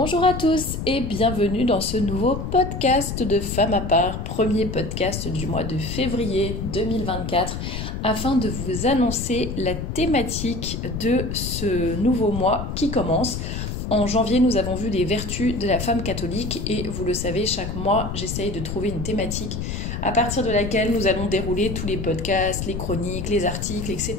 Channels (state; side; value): noise; left; rumble, 5 dB below the sound